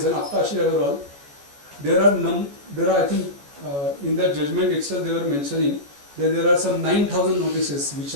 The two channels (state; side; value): late; left; 14 ms